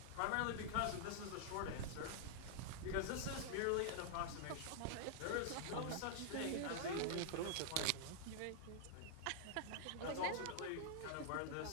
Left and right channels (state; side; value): different; both; correlation -0.01